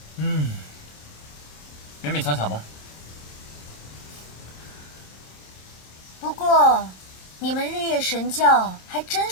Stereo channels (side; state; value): right; late; 26 ms